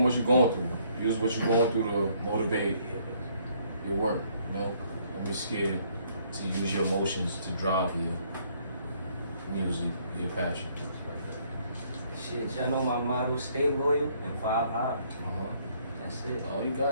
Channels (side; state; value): both; inverted; correlation -0.66